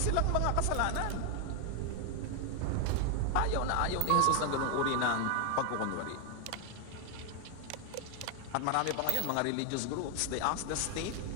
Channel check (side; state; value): both; different; correlation 0.01